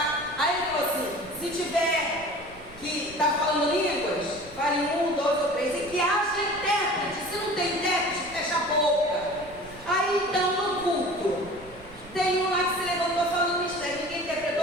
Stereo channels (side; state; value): right; noise; rumble, 20 dB below the sound